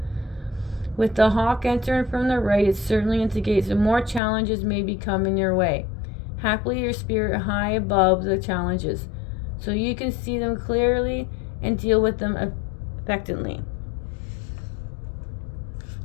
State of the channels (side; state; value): right; drops out; at 4.2 s